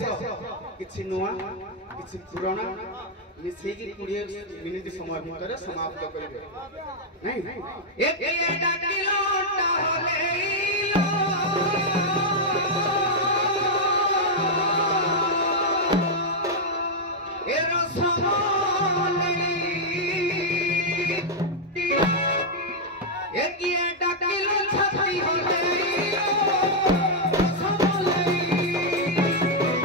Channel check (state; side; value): normal; both; correlation -0.03